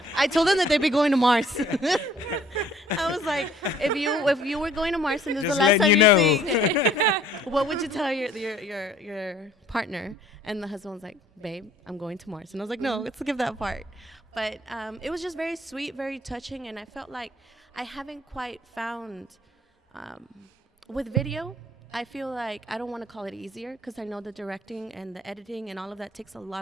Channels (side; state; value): both; normal; correlation 0.57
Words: I told them that they'd be going to Mars. I was like, if you were going to Mars and this is Just the last time letting you see, what would you tell your partner? And the husband was like, "Babe, I'm going to Mars." And I was like, "No, let's skip that part." But it was just very sweet, very touching, and I felt like I haven't quite found with video. I feel like I don't want to call it easier because I know the directing and the editing and all of that takes a